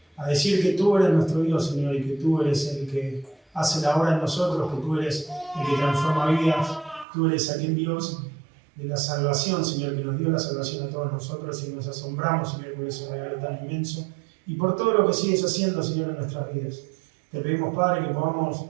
a decir que tú eres nuestro Dios, Señor, y que tú eres el que hace la obra en nosotros, que tú eres el que transforma vidas. Tú eres aquel Dios de la salvación, Señor, que nos dio la salvación a todos nosotros y nos asombramos, Señor, por ese regalo tan inmenso y por todo lo que sigues haciendo, Señor, en nuestras vidas. Te pedimos, Padre, que podamos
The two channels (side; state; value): left; drops out; at 7.1 s